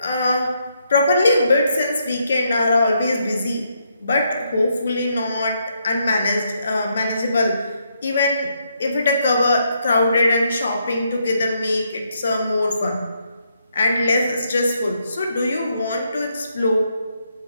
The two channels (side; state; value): both; inverted; correlation -0.77